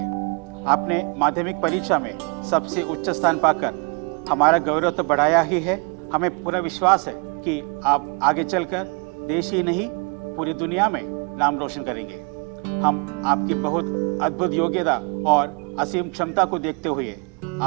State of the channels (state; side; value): quieter; left; 34.9 dB